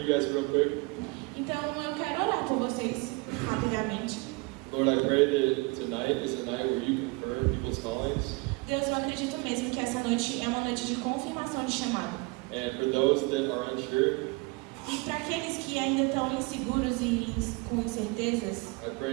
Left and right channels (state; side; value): quieter; left; 26.8 dB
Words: guys real quick. Então eu quero orar por vocês rapidamente. Lord, I pray that tonight is a night where you confirm people's callings. Deus, eu acredito mesmo que essa noite é uma noite de confirmação de chamado. And for those that are unsure, E para aqueles que ainda estão inseguros e com incertezas, I